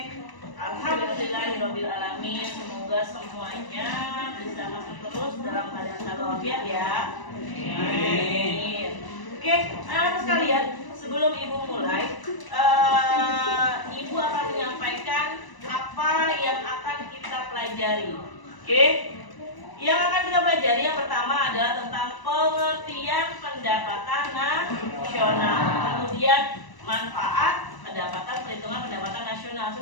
Alhamdulillahirabbil alamin. Semoga semuanya bisa masuk terus dalam keadaan selalu walafiat ya. Amin. Oke, anak sekalian, sebelum Ibu mulai, Ibu akan menyampaikan apa yang akan kita pelajari. Oke? Yang akan kita pelajari yang pertama adalah tentang pengertian pendapatan nasional. Kemudian manfaat pendapatan, perhitungan pendapatan nasional.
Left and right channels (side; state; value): right; late; 1.0 ms